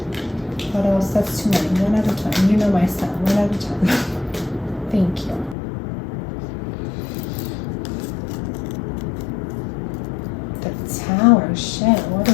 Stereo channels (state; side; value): drops out; right; at 5.6 s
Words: What else? That's too many. One at a time. You know my style. One at a time. Thank you. The Tower. Shit. What